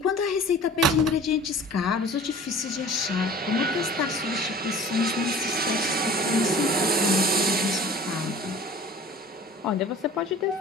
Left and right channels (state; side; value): normal; both; correlation 0.43